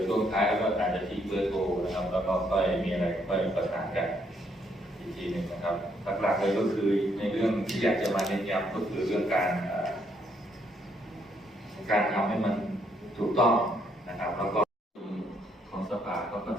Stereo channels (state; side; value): normal; both; correlation 0.72